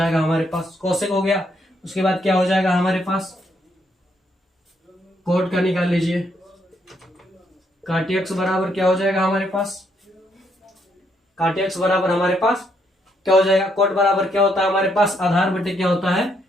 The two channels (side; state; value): both; normal; correlation 0.74